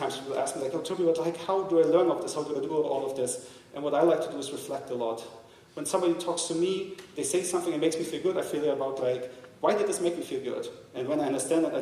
people ask me, like, oh, Tobias, like, how do I learn of this? How do I do all of this? And what I like to do is reflect a lot. When somebody talks to me, they say something that makes me feel good, I feel about, like, why did this make me feel good? And when I understand that,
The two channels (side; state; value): both; identical; correlation 1.00